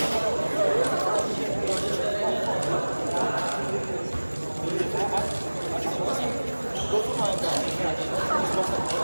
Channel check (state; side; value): inverted; both; correlation -1.00